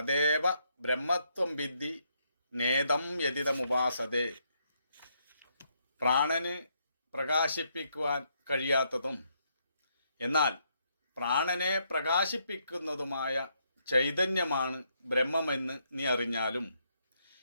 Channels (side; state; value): both; inverted; correlation -0.76